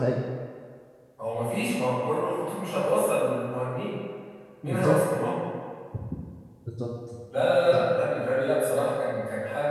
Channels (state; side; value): identical; both; correlation 1.00